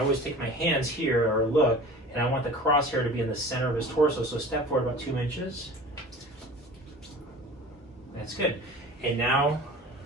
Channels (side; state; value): both; normal; correlation 0.40